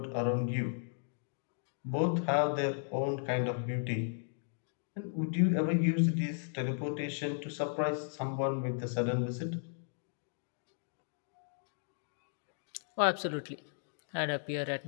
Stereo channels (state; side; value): silent; right; digital silence